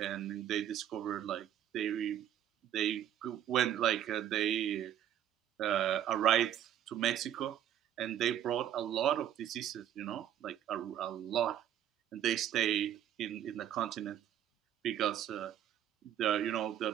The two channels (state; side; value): quieter; left; 10.7 dB